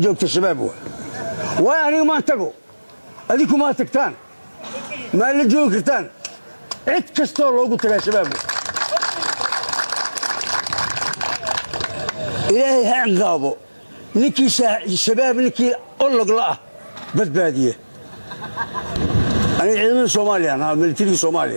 joogta shabaab waa waayo aniga maan tago adinku maa tagtaan maa la joogi kartaan cid kastoo loogu tagaa shabaab waa ilaahay ha ciqaabo ninkii shabaab ninkii ologla ah badbaadiye aniga ciidamada soomaaliya ahaa militarigii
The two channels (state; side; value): inverted; both; correlation -1.00